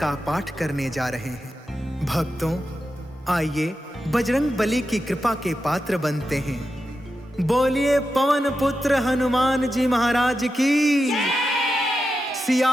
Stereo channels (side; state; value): both; normal; correlation 0.89